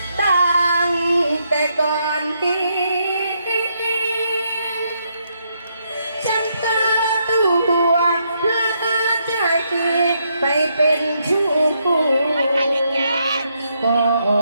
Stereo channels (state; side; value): inverted; both; correlation -0.77